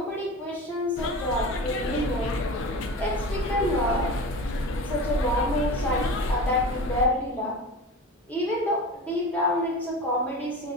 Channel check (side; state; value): both; normal; correlation 0.32